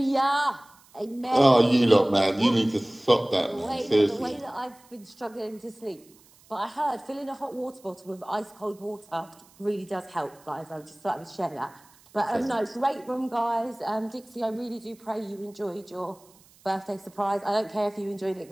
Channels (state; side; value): noise; right; hiss, 28 dB below the sound